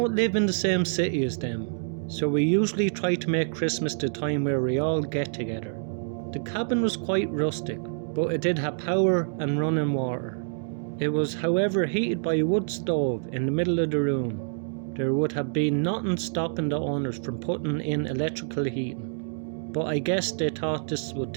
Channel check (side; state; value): left; silent; digital silence